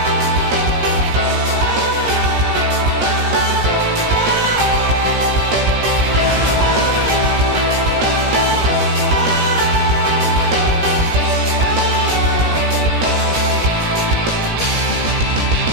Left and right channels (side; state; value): left; late; 17 ms